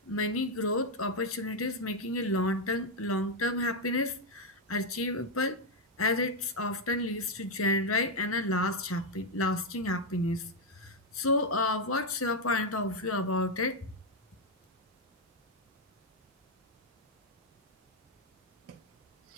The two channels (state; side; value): normal; both; correlation 0.02